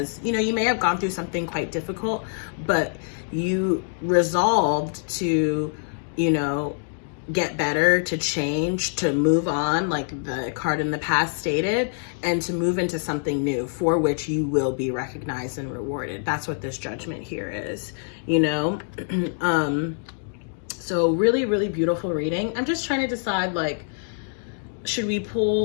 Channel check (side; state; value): right; silent; digital silence